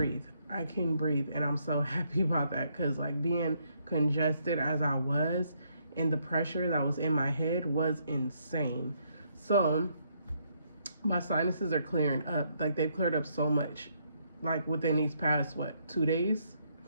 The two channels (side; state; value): both; inverted; correlation -0.73